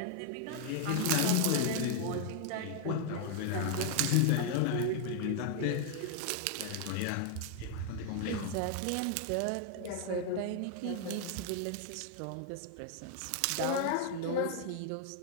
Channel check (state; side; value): different; both; correlation 0.00